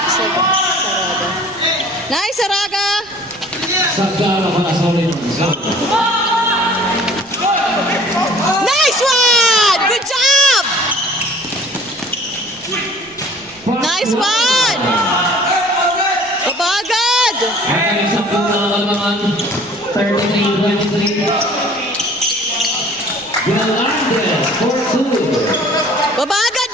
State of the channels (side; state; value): right; noise; rumble, 30 dB below the sound